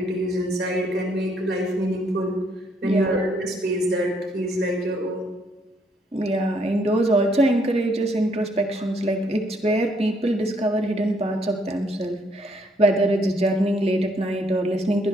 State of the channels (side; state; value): both; normal; correlation 0.69